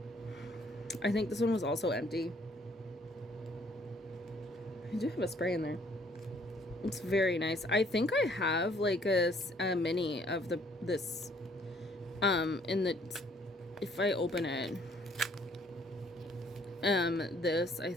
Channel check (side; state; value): both; normal; correlation 0.63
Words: I think this one was also empty. I do have a spray in there. It's very nice. I think I have like a mini of this if I open it, this, I